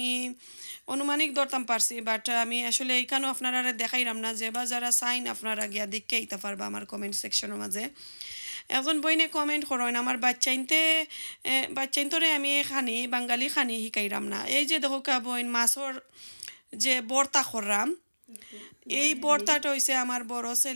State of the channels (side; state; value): both; inverted; correlation -1.00